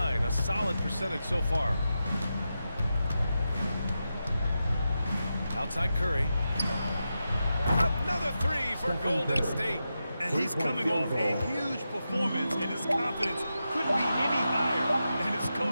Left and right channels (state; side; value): inverted; both; correlation -0.89